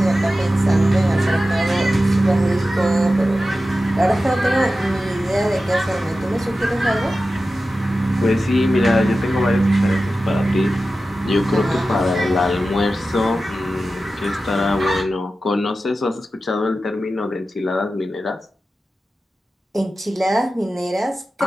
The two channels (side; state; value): both; normal; correlation 0.93